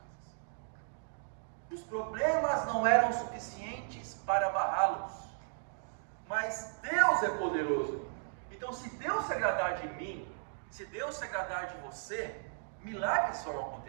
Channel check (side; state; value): left; silent; digital silence